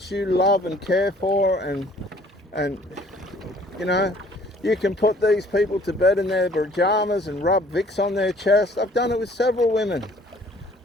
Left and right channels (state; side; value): normal; both; correlation 0.57